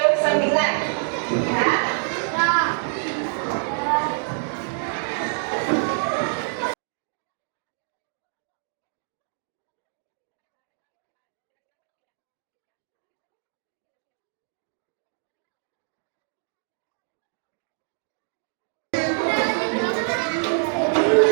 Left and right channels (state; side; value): silent; left; digital silence